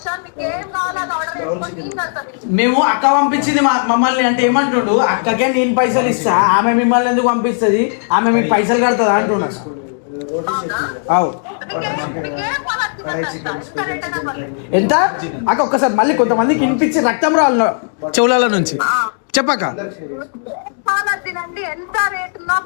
నీకేం కావాలో అది ఆర్డర్ చేసుకొని నేను కడతాను. మేము అక్క పంపించింది మమ్మల్ని అంటే ఏమంటుండు, అక్కకే నేను పైసలు ఇస్తా, ఆమె మిమ్మల్ని ఎందుకు పంపిస్తుంది, ఆమె మీకు పైసలు కడుతుందా అంటున్నా. అవు ఎంత అక్క? ఒక్కసారి మళ్ళీ కొంతమందికి వినిపించి రక్తం రాళ్ళు చెవుల నుంచి చెప్పక్క. తినండి, ఎంత రేట్ ఉన్నా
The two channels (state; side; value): silent; right; digital silence